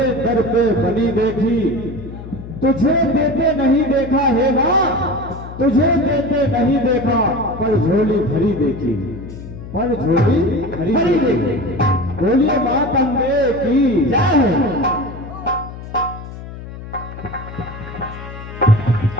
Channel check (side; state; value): left; noise; hum, 12 dB below the sound